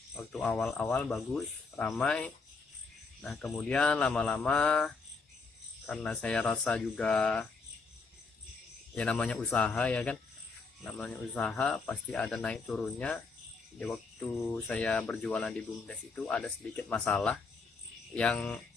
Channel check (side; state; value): right; quieter; 4.3 dB